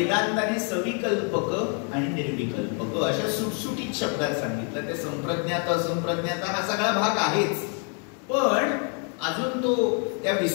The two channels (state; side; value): quieter; right; 39.9 dB